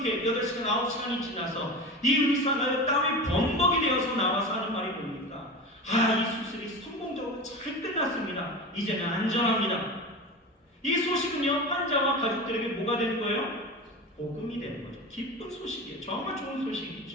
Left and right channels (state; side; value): normal; both; correlation 0.28